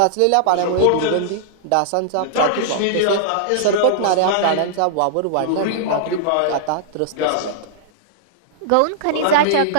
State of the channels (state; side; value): different; both; correlation -0.01